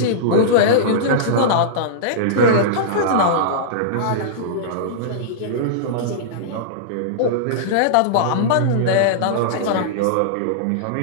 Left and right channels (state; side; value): different; both; correlation -0.03